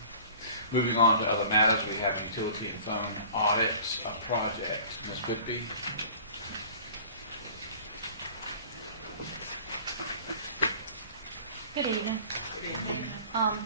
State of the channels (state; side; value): inverted; both; correlation -0.45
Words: Moving on to other matters, we have utility and phone audits project. Ms. Whitby. Good evening.